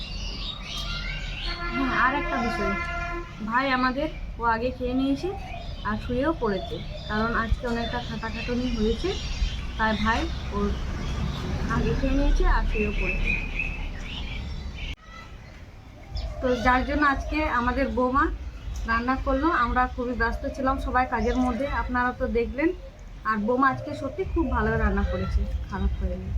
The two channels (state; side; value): identical; both; correlation 1.00